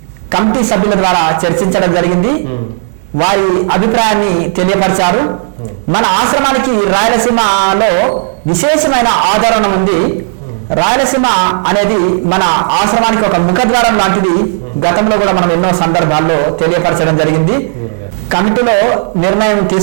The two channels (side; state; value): left; silent; digital silence